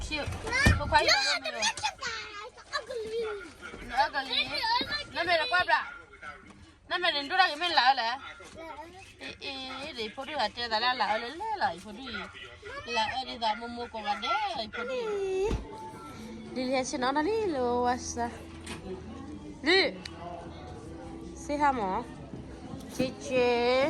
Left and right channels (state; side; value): identical; both; correlation 1.00